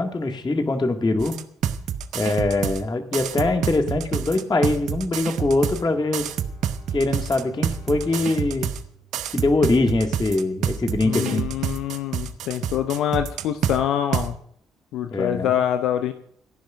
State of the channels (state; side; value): normal; both; correlation 0.74